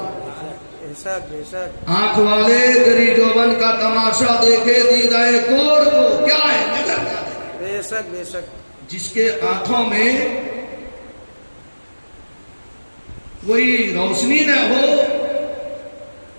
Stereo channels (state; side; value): inverted; both; correlation -1.00